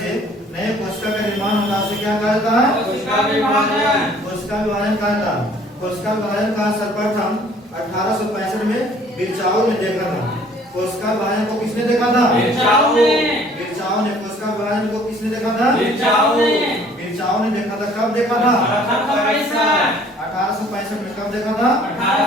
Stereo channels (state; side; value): normal; both; correlation 0.56